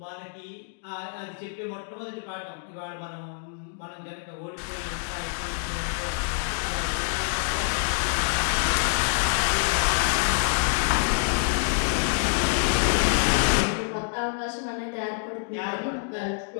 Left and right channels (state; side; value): silent; right; digital silence